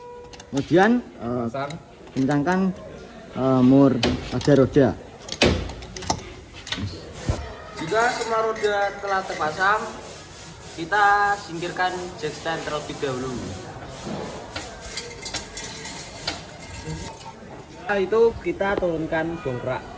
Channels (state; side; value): identical; both; correlation 1.00